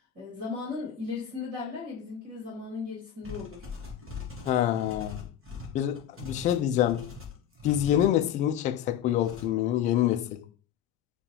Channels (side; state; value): right; quieter; 10.1 dB